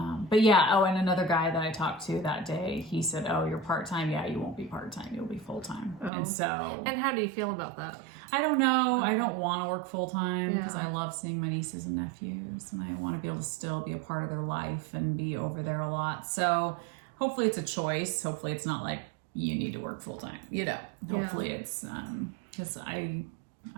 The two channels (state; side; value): drops out; left; at 6.1 s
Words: but yeah. Oh, and another guy that I talked to that day, he said, oh, you're part-time. Yeah, you won't be part-time. You'll be full-time. Oh. And so. And how do you feel about that? I don't know. I don't want to work full-time because Yeah. I love seeing my nieces and nephews, and I want to be able to still be a part of their life and be over there a lot. So hopefully it's a choice. Hopefully it's not like you need to work full-time, you know. Hopefully it's, because I